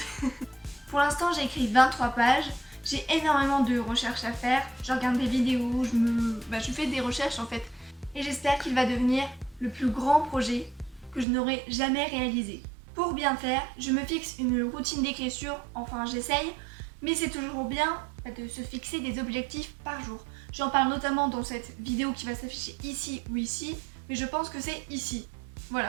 Pour l'instant, j'ai écrit 23 pages. J'ai énormément de recherches à faire. Je regarde des vidéos, je fais des recherches en fait. Et j'espère qu'il va devenir le plus grand projet que je n'aurai jamais réalisé. Pour bien faire, je me fixe une routine d'écriture, enfin j'essaye, mais c'est toujours bien de se fixer des objectifs par jour. J'en parle notamment dans cette vidéo qui va s'afficher ici ou ici, mais je pense que c'est ici.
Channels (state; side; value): drops out; left; at 11.2 s